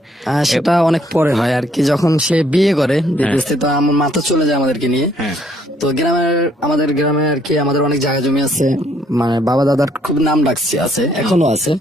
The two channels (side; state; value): both; normal; correlation 0.66